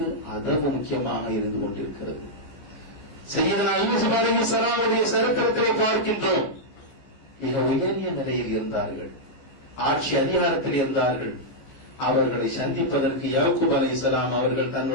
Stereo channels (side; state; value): right; late; 14 ms